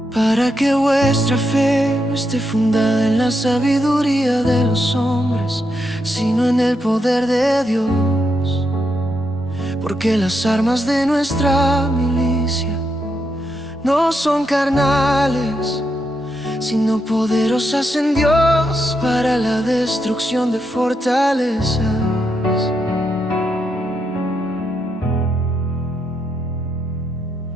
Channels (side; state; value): both; normal; correlation 0.82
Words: Para que vuestra fe no esté fundada en la sabiduría de los hombres, sino en el poder de Dios. Porque las armas de nuestra milicia no son carnales, sino poderosas en Dios para la destrucción de fortalezas.